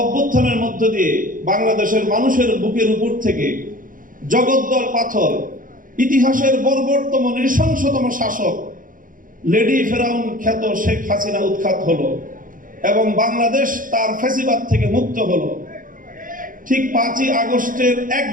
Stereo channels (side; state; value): left; late; 0.39 ms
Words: অভ্যুত্থানের মধ্য দিয়ে বাংলাদেশের মানুষের বুকের উপর থেকে জগদ্দল পাথর, ইতিহাসের বর্বরতম নৃশংসতম শাসক লেডি ফেরাউন খ্যাত শেখ হাসিনা উৎখাত হলো এবং বাংলাদেশ তার ফ্যাসিবাদ থেকে মুক্ত হলো, ঠিক 5ই আগস্টের